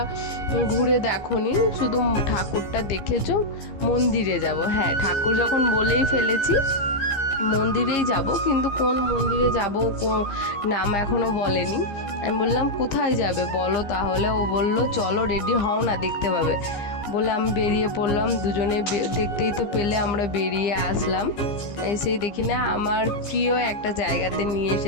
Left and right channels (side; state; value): right; late; 15 ms